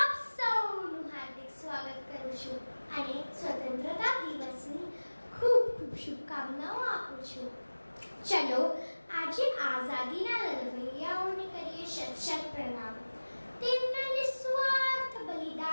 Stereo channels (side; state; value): both; inverted; correlation -1.00